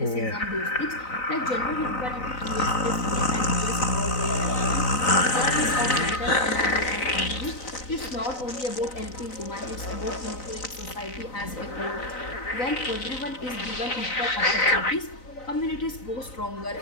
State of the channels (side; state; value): right; late; 4.0 ms